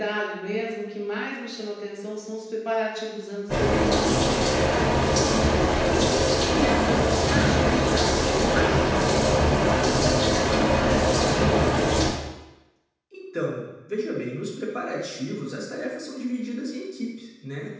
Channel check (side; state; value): both; identical; correlation 1.00